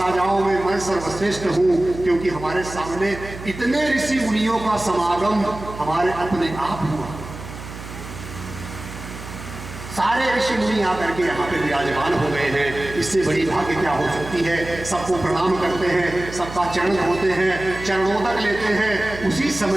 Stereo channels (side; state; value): right; noise; hum, 12 dB below the sound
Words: में मैं सर्वश्रेष्ठ हूँ, क्योंकि हमारे सामने इतने ऋषि मुनियों का समागम हमारे अपने आप हुआ। सारे ऋषि मुनि आकर के यहाँ पे विराजमान हो गए हैं। इससे बड़ी भाग्य क्या हो सकती है। सबको प्रणाम करते हैं, सबका चरण धोते हैं, चरणोदक लेते हैं। उसी